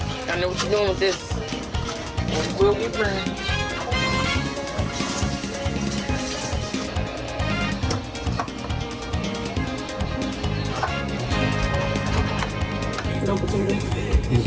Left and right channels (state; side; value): identical; both; correlation 1.00